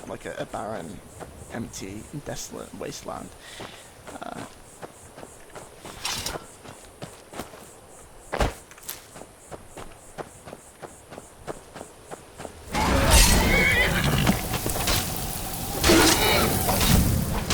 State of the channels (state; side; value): identical; both; correlation 1.00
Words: like a barren, empty, desolate wasteland.